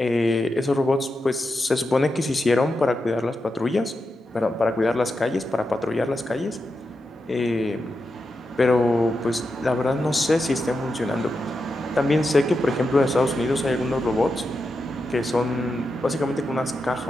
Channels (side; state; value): both; normal; correlation 0.88